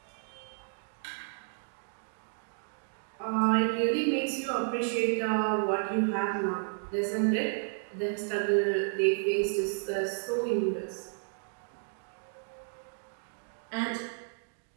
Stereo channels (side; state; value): left; silent; digital silence